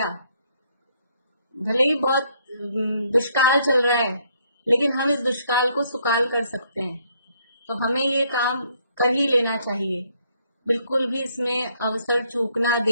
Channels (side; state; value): both; inverted; correlation -0.69